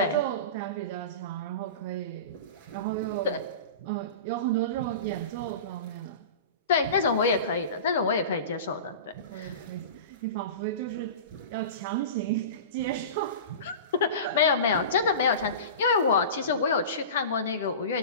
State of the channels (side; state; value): both; inverted; correlation -0.32